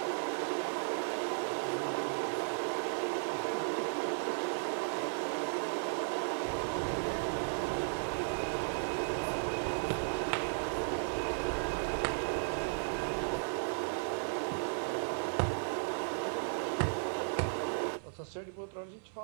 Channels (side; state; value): left; silent; 54 dB below the other